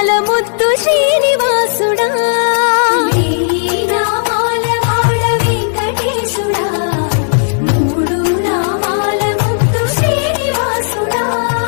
ముద్దు శ్రీనివాసుడా వేయి నామాల వాడ వెంకటేశుడా మూడు నామాల ముద్దు శ్రీనివాసుడా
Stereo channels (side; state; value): right; silent; digital silence